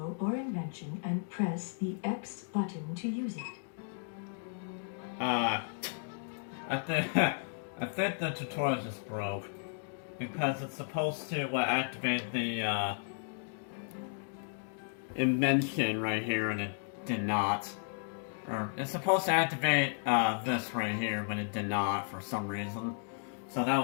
or invention and press the X button to use it. I think the tutorial just broke. Because it's supposed to activate the invention right here, and it did not. Or it's supposed to activate this right here, but it did not for some reason. So that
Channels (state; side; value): silent; right; digital silence